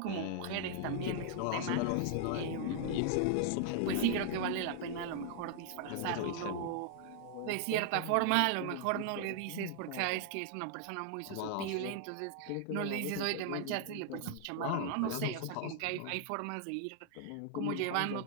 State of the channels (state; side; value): different; both; correlation 0.00